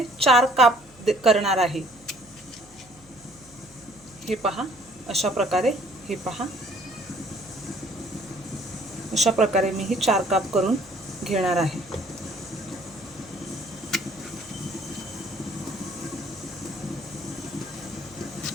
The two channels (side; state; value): right; noise; hum, 26 dB below the sound